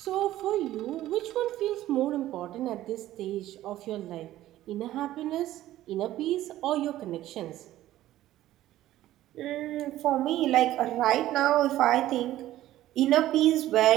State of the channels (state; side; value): quieter; left; 14.3 dB